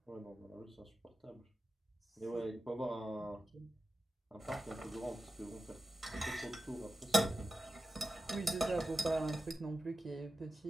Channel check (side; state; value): both; normal; correlation 0.92